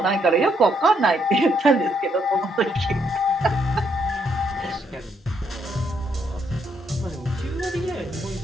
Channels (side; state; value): both; normal; correlation 0.74